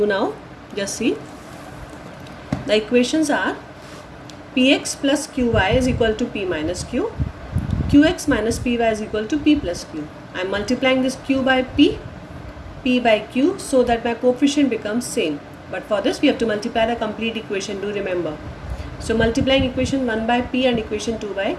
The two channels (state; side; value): identical; both; correlation 1.00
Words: now. Just see. The equations are Px plus Qy is equal to P minus Q. Qx minus Py is equal to P plus Q. I am multiplying this Q by P, P by Q so that my coefficient becomes same. But for this we have to multiply the complete equation, do remember. So multiplying equation 1 by P and equation 2 by